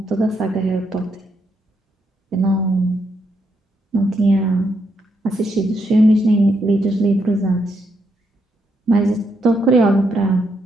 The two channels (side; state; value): both; normal; correlation 0.78